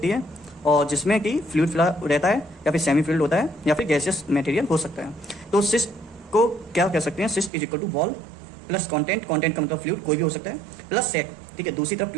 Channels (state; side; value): drops out; left; at 7.5 s